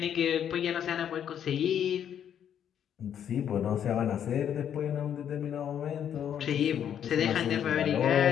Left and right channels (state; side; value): quieter; right; 9.3 dB